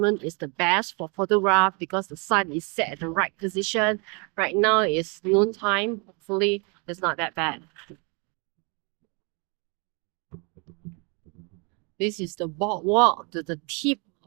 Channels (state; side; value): quieter; left; 32.9 dB